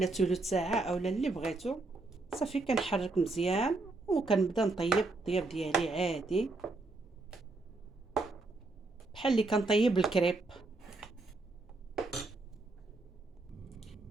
ثلث ساعه اولا اللي بغيتو. صافي كنحرك مزيان وكنبدا نطيب الطياب ديالي عادي بحال اللي كنطيب الكريب.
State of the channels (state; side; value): quieter; left; 3.3 dB